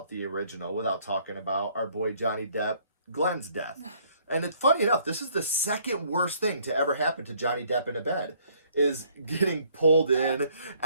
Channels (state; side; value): inverted; both; correlation -0.63